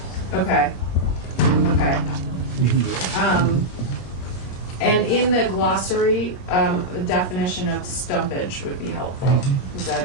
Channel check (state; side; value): late; right; 22 ms